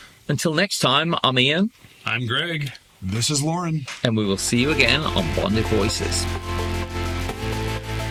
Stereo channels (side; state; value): both; identical; correlation 1.00